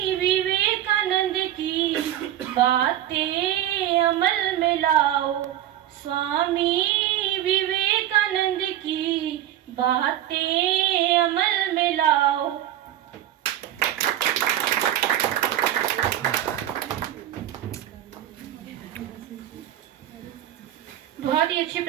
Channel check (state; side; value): quieter; left; 12.3 dB